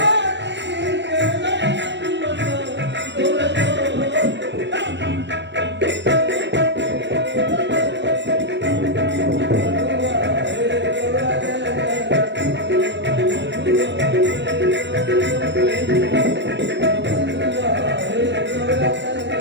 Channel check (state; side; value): late; left; 0.52 ms